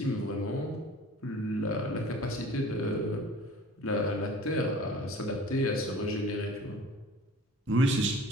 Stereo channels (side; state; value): both; normal; correlation 0.44